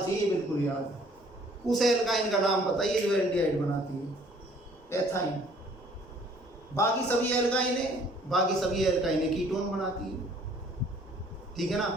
बिल्कुल याद। उस एल्काइन का नाम बताइए जो एल्डिहाइड बनाती है? एथाइन। बाकी सभी एल्काइनें कीटोन बनाती है। ठीक है ना।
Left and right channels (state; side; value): normal; both; correlation 0.57